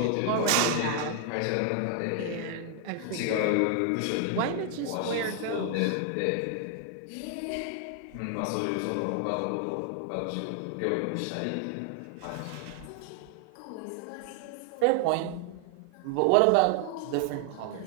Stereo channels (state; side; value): different; both; correlation 0.00